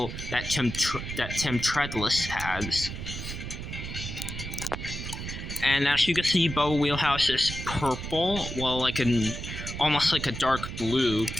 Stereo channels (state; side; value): noise; right; rumble, 7 dB below the sound